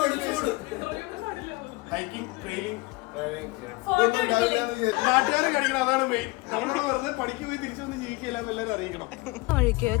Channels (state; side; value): quieter; right; 23.3 dB